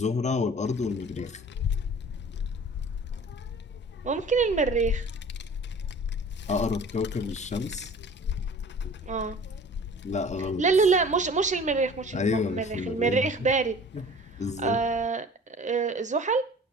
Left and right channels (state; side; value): normal; both; correlation 0.45